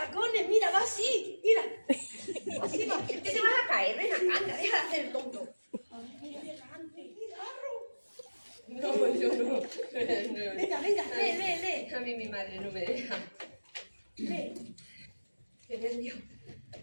mira, va así, mira. Así va. ¿Qué te vas a caer? Ven acá, anda, deja de hacer el tonto. Muy elegante, guitarro. No, yo no. Venga, lee. A mí mi madre no me deja. Lee. Qué nervio.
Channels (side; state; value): both; inverted; correlation -1.00